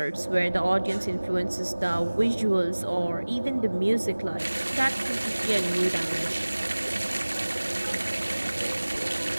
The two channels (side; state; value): both; inverted; correlation -1.00